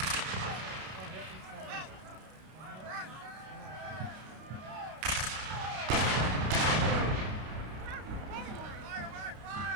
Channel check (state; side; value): late; left; 32 ms